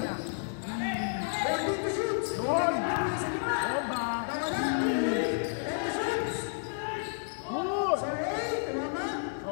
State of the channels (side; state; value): right; silent; 57 dB below the other